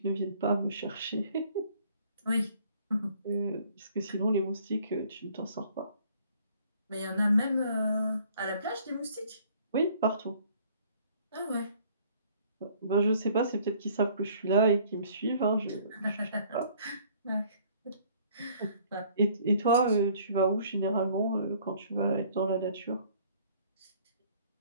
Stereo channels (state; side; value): inverted; both; correlation -0.58